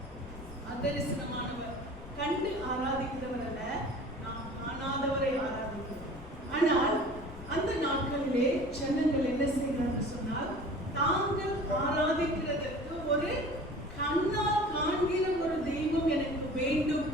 அதரிசனமானவர். கண்டு ஆராதிக்கிறவர் அல்ல, நாம் காணாதவரை ஆராதிக்கிறோம். ஆனால் அந்த நாட்களிலே ஜனங்கள் என்ன செய்கிறார்கள் சொன்னால் தாங்கள் ஆராதிக்கிறதற்கு ஒரு கண்ணால் காண்கிற ஒரு தெய்வம் எனக்கு வேண்டும்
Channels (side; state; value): left; noise; rumble, 16 dB below the sound